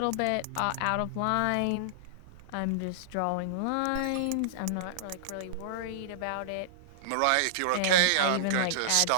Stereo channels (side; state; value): both; different; correlation -0.01